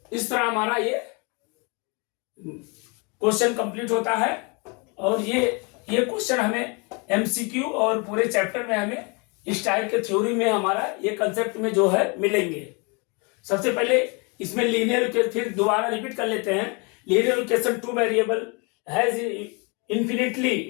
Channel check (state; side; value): quieter; right; 31.5 dB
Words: इस तरह हमारा ये क्वेश्चन कंप्लीट होता है। और ये क्वेश्चन हमें MCQ और पूरे चैप्टर में हमें इस टाइप के थ्योरी में हमारा ये कंसेप्ट में जो है मिलेंगे। सबसे पहले इसमें लीनियर, फिर दोबारा रिपीट कर लेते हैं, linear equation 2 variable has infinitely